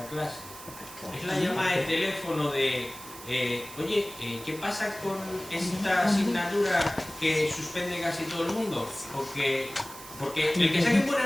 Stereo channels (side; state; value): right; noise; hiss, 15 dB below the sound